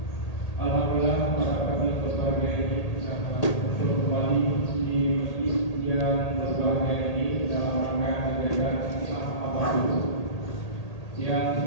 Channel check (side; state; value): right; late; 1.8 ms